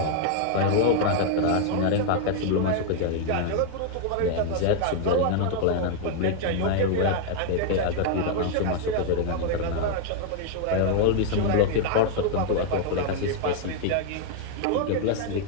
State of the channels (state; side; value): different; both; correlation 0.00